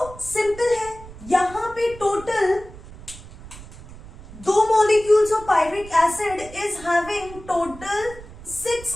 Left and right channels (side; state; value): right; noise; rumble, 17 dB below the sound